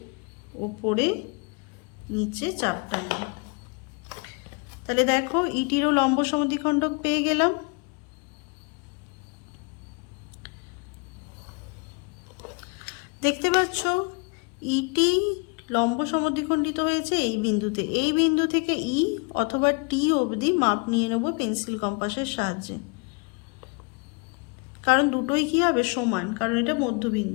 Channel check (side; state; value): right; quieter; 32.6 dB